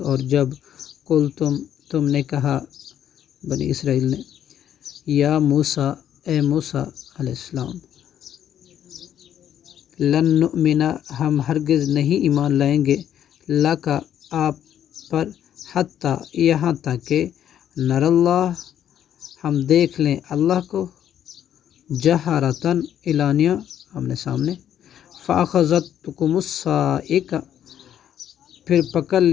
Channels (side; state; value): right; quieter; 10.2 dB